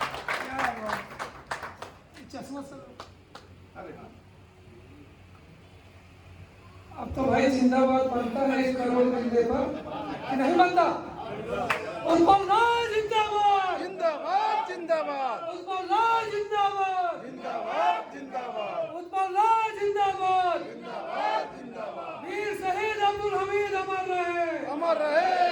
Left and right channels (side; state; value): both; identical; correlation 1.00